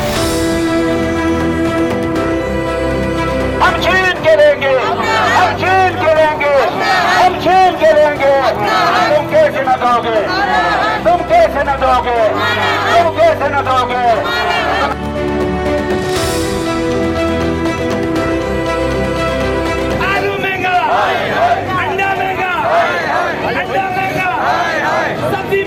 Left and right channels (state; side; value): identical; both; correlation 1.00